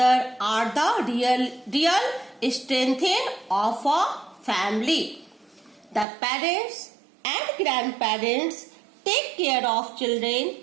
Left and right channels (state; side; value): drops out; left; at 6.1 s